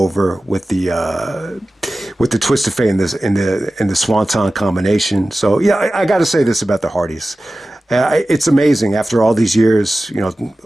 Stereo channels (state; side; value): normal; both; correlation 0.95